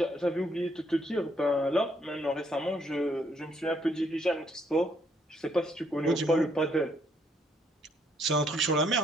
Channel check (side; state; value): both; normal; correlation 0.70